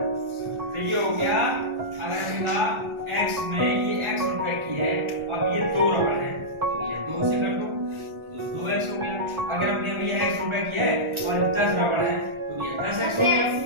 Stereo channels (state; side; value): late; left; 1.4 ms